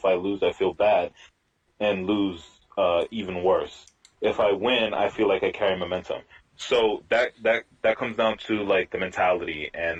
I lose, I feel bad, and lose even worse. If I win, I feel like I carry momentum. So that comes down to like the mentality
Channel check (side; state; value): both; identical; correlation 1.00